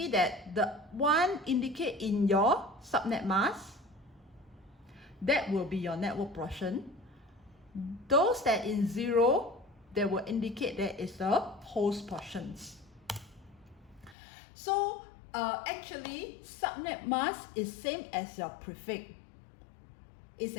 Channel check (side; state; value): right; drops out; at 14.2 s